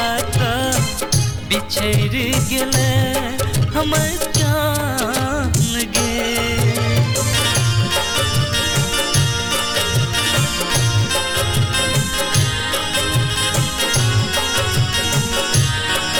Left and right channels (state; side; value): identical; both; correlation 1.00